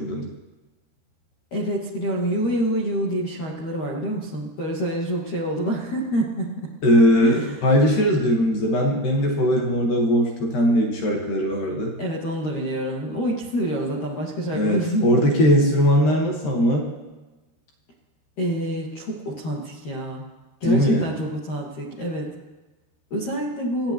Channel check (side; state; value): right; late; 13 ms